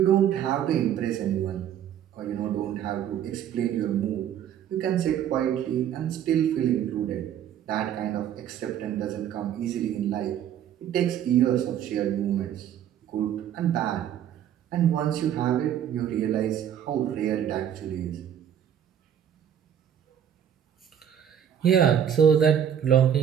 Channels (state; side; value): quieter; left; 9.6 dB